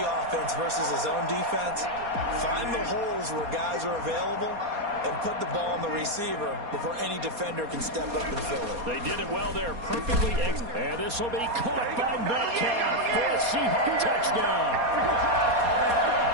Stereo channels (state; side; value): late; left; 4.2 ms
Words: offense versus his own defense, find the holes where guys are available and put the ball on the receiver before any defender can step up and fill it. They did it well there, perfectly. And this will be caught by Metcalf for a Seahawk touchdown.